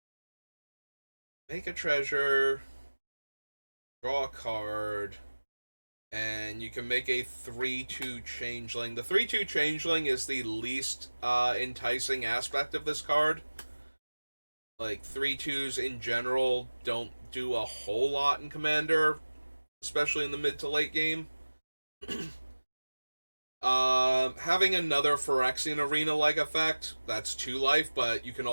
Make a treasure, draw a card, and you can make a 3/2 changeling. The 3/2 changeling is the least enticing aspect of this card. Like, 3/2s in general don't do a whole lot in Commander, especially in the mid to late game. Having another Phyrexian Arena-like effect, that's 2 life, but you can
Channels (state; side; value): inverted; both; correlation -1.00